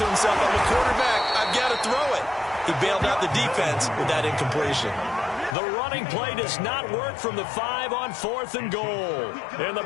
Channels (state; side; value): drops out; right; at 5.6 s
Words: himself, I'm a quarterback, I've got to throw it. He bailed out the defense with that incompletion. The running play does not work from the 5 on 4th and goal. And the